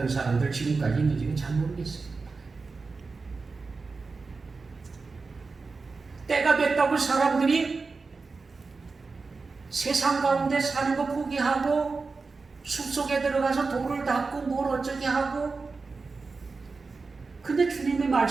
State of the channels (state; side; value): quieter; left; 4.2 dB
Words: 사람들 지금까지 있는지는 잘 모르겠어요. 때가 됐다고 사람들이 세상 가운데 사는 거 포기하고 숲속에 들어가서 돌을 닦고 뭘 어쩌게 하고, 근데 주님의